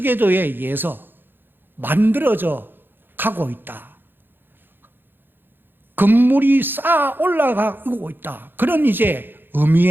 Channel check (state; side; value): late; left; 0.098 ms